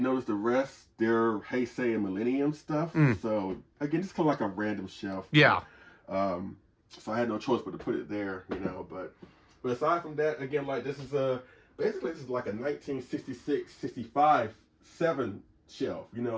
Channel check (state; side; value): identical; both; correlation 1.00